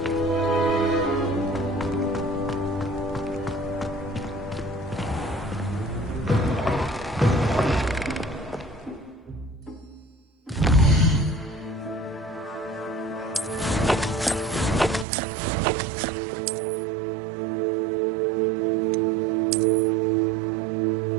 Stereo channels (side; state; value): left; drops out; at 15.1 s